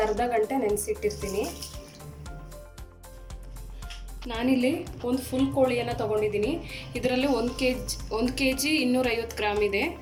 ಅರ್ಧ ಗಂಟೆ ನೆನೆಸಿಟ್ಟಿರ್ತೀನಿ. ನಾನಿಲ್ಲಿ ಒಂದು ಫುಲ್ ಕೋಳಿಯನ್ನು ತೊಗೊಂಡಿದ್ದೀನಿ. ಇದರಲ್ಲಿ 1 kg 250 ಗ್ರಾಮ್ ಇದೆ.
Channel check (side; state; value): both; identical; correlation 1.00